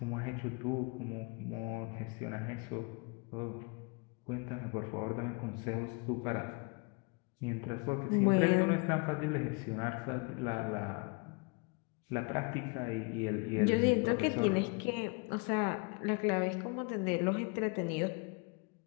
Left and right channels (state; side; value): quieter; right; 31.7 dB